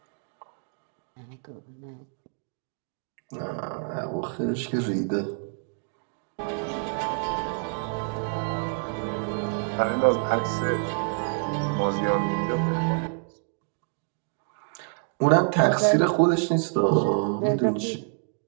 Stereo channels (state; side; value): silent; left; 60 dB below the other